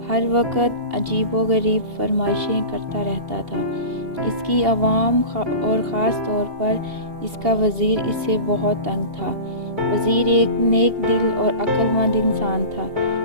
ہر وقت عجیب و غریب فرمائشیں کرتا رہتا تھا۔ اس کی عوام اور خاص طور پر اس کا وزیر اس سے بہت تنگ تھا۔ وزیر ایک نیک دل اور عقل مند انسان تھا،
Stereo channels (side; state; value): left; late; 2.8 ms